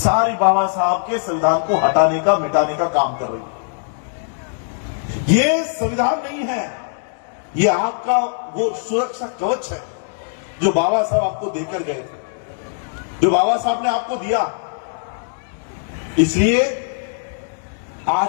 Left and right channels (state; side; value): silent; right; digital silence